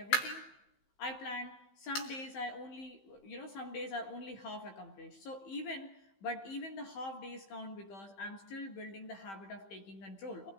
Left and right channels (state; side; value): late; right; 15 ms